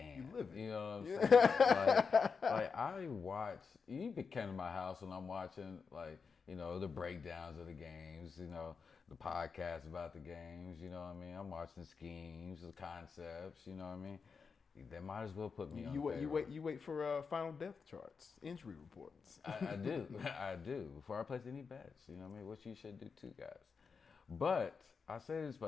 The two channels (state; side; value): quieter; right; 5.4 dB